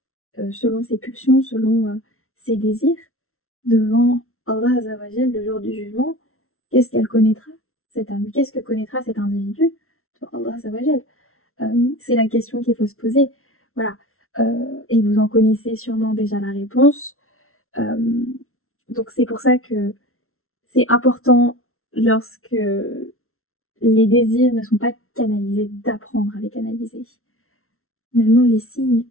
selon ses pulsions, selon ses désirs, devant Allah Azzawajal le jour du jugement, qu'est-ce qu'elle connaîtra, cette âme? Qu'est-ce que connaîtra cet individu devant Allah Azzawajal? C'est la question qu'il faut se poser. Voilà. Et vous en connaissez sûrement déjà la réponse. Donc c'est pour ça que c'est important, lorsque les désirs ne sont pas canalisés, d'apprendre à les canaliser. Finalement, les signes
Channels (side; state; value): right; late; 0.62 ms